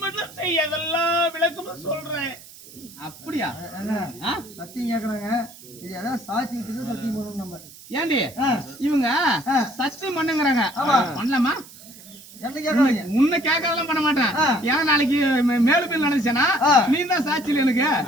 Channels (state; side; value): noise; right; hiss, 19 dB below the sound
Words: மட்டும் செய், அதெல்லாம் விளக்கமா சொல்றேன். அப்படியா? சத்தியம் கேக்குறாங்க. இது அதான் சாட்சி வச்சு சத்தியம் பண்ணணும் நம்ம. ஏண்டி இவங்க சத்தியம் பண்ணுங்கறாங்க. பண்ணலாமா? என்ன கேக்குறாங்க? உன்னை கேட்கறதெல்லாம் பண்ண மாட்டேன். ஏன்னா நாளைக்கு மேலும் பேர் நினைச்சேனா நீ தான் சாட்சியில் எனக்கு.